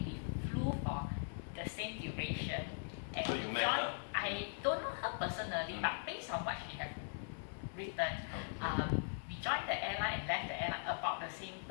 we flew for the same duration. And So you met her? I don't know her personally, but based on what she had written, we joined the airline and left the airline about the same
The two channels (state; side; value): silent; right; 51 dB below the other